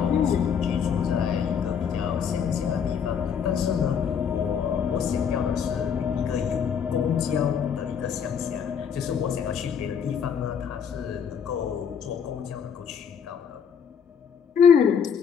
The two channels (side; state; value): right; quieter; 7.3 dB